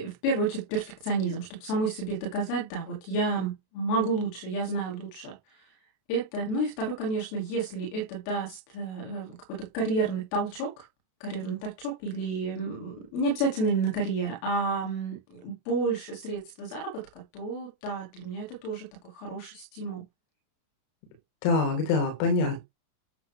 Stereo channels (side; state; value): right; late; 32 ms